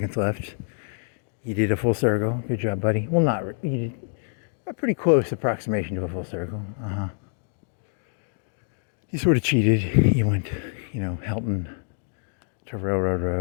left. You did a full circle. Good job, buddy. Well, you did a pretty close approximation to a full circle. You sort of cheated. You went, Helton to Railroad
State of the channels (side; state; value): right; silent; digital silence